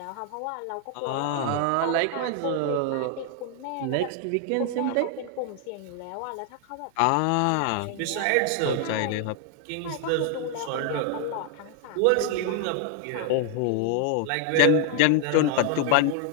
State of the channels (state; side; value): different; both; correlation 0.00